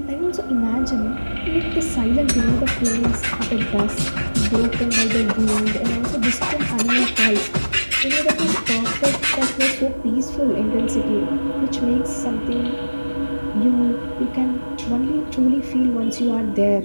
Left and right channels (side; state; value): both; inverted; correlation -1.00